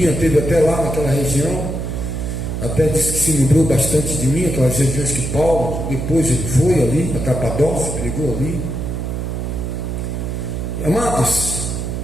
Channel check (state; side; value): noise; right; hum, 3 dB below the sound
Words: esteve até lá naquela região, até disse que se lembrou bastante de mim, aquelas regiões que Paulo, depois ele foi ali, na Capadócia, pregou ali. Amados,